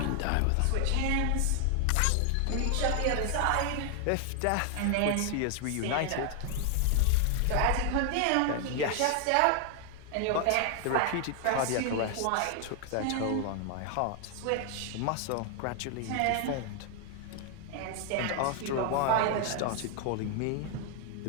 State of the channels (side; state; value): both; different; correlation 0.00